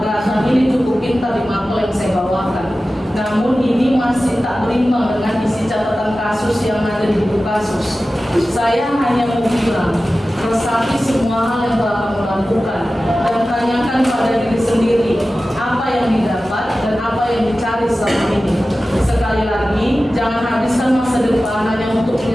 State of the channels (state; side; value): normal; both; correlation 0.95